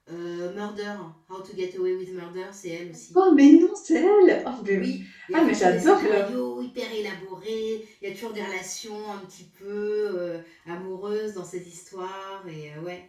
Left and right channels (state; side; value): identical; both; correlation 1.00